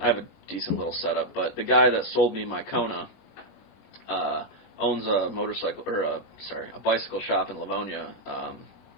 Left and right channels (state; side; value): late; right; 20 ms